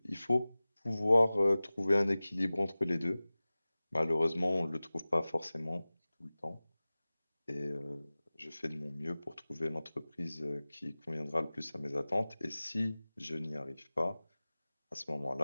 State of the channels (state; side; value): inverted; both; correlation -0.98